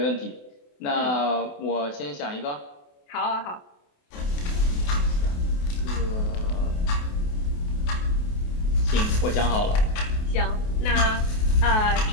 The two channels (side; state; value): right; late; 28 ms